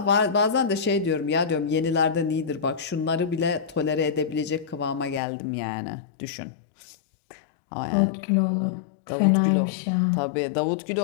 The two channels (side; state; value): right; drops out; at 5.2 s